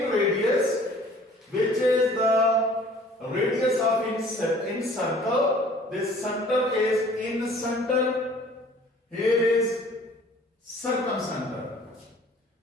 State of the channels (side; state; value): both; normal; correlation 0.52